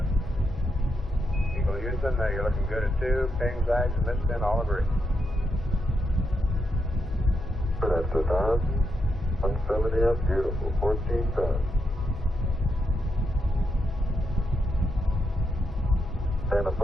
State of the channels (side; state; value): both; normal; correlation 0.82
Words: Eagle Houston, you're looking good at 2. Ping, zags, and missing, all agree. That's a 170 up. Beautiful. 14 tons. And a